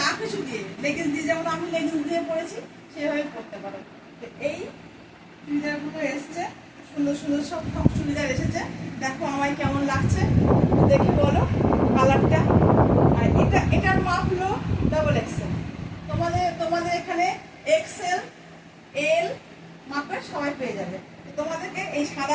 কিছু দিয়ে, লেগিংস দিয়ে, যেমন আমি লেগিংস দিয়ে পরেছি সেভাবে পরতে পারো। তো এই চুড়িদারগুলো এসছে, সুন্দর সুন্দর সব চুড়িদার এসেছে। দেখো আমায় কেমন লাগছে দেখে বলো কালারটা। আর এটার মাপ হলো ডাবল এক্সেল। তোমাদের এখানে এক্সেল, এল মাপের সবাই পেয়ে যাবে। তোমাদেরকে এই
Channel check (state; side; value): identical; both; correlation 1.00